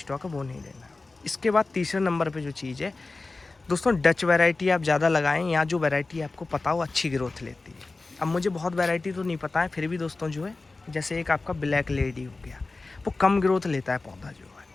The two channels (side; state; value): right; quieter; 3.5 dB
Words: है वो नहीं लेना। इसके बाद तीसरे नंबर पे जो चीज़ है दोस्तों, डच वैरायटी आप ज़्यादा लगाएं, या जो वैरायटी आपको पता हो अच्छी ग्रोथ लेती है। अब मुझे बहुत वैरायटी तो नहीं पता है, फिर भी दोस्तों जो है जैसे एक आपका ब्लैक लेडी हो गया, वो कम ग्रोथ लेता है पौधा जो है।